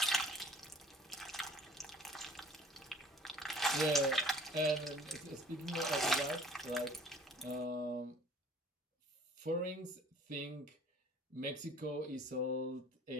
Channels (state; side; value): normal; both; correlation 0.52